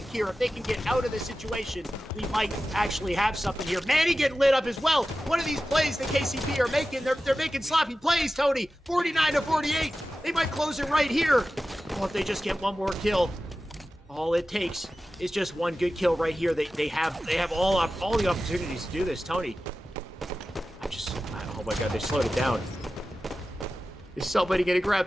here. If they can get out of this situation, we might actually have something here. Manny getting lit up as well. One of these plays that KCP are making, they're making sloppy plays, Tony. 49-48. They might close it right here. Oh, if they just get one more kill. All it takes is just one good kill right here. They have all the opportunities to do this, Tony. Oh my god, they slowed it down. Is somebody gonna grab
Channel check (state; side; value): normal; both; correlation 0.94